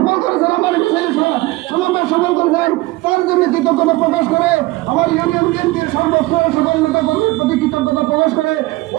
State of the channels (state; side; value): quieter; left; 20.5 dB